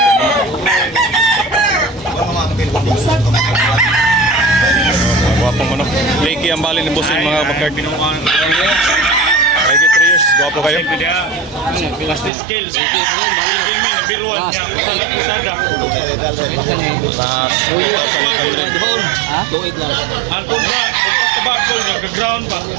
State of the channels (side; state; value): left; drops out; at 12.3 s